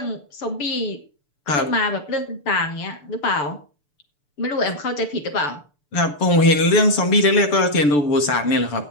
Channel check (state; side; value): late; right; 6.8 ms